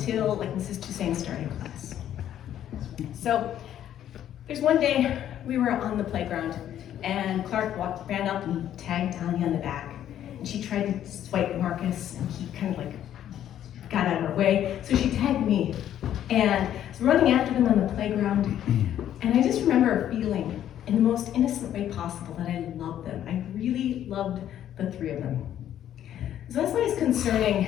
Mrs. Toussaint started class. So there's one day we were on the playground, and Clark ran up and tagged Tanya on the back. And she tried to swipe Marcus, and he kind of got out of her way. So she tagged me, and I was running after them on the playground. And I just remember feeling, in the most innocent way possible, that I loved them. I really loved the 3 of them. So that's why it's concerning,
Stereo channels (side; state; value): right; quieter; 11.0 dB